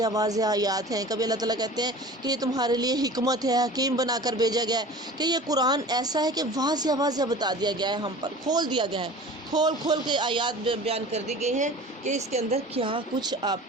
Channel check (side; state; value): both; normal; correlation 0.40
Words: آیات ہیں، کبھی اللہ تعالیٰ کہتے ہیں کہ یہ تمہارے لیے حکمت ہے، حکیم بنا کر بھیجا گیا ہے، کہ یہ قرآن ایسا ہے کہ واضح بتا دیا گیا ہے، ہم پر کھول دیا گیا ہے، کھول کے آیات بیان کر دی گئی ہیں کہ اس کے اندر کیا کچھ آپ